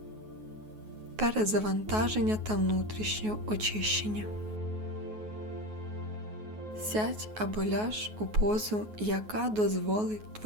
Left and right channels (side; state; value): left; late; 9.4 ms